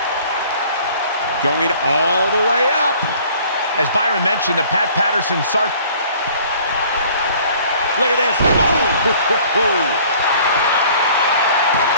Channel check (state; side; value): inverted; both; correlation -0.53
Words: Going all the way up. As Byron mentioned, the Pat Patterson Sergeant... Look at this. Boom!